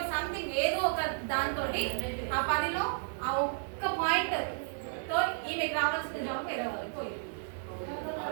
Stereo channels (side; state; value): left; silent; 56 dB below the other